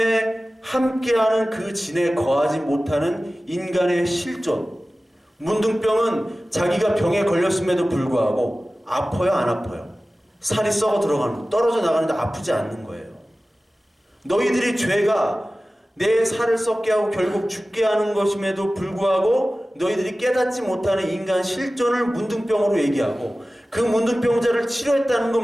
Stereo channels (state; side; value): normal; both; correlation 0.96